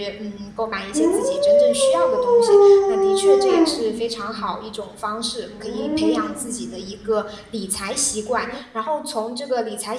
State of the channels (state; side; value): identical; both; correlation 1.00